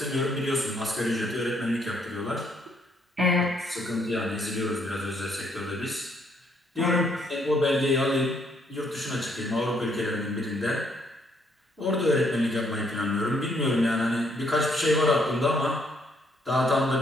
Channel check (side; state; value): both; normal; correlation 0.70